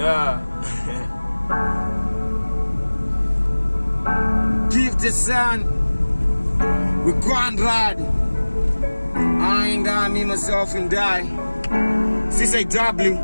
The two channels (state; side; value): inverted; both; correlation -1.00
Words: Give the sun. We grind ride. I ain't die, me, myself, and die. CCW.